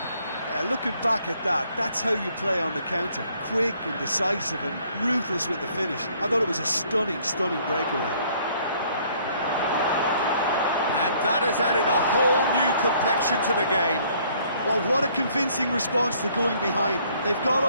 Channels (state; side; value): inverted; both; correlation -0.62